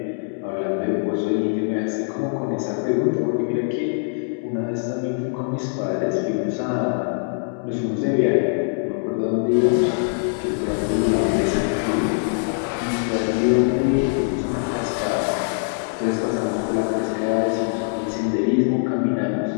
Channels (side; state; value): right; silent; 64 dB below the other